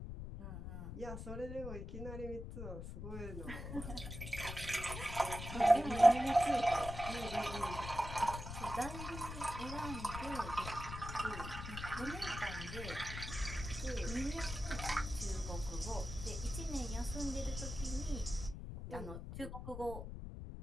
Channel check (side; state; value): left; noise; rumble, 7 dB below the sound